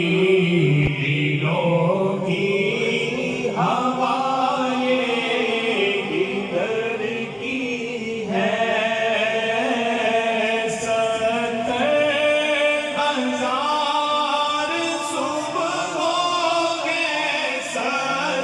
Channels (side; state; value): both; identical; correlation 1.00